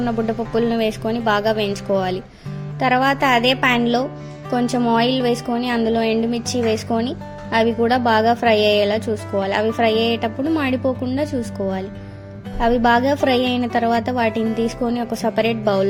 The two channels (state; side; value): identical; both; correlation 1.00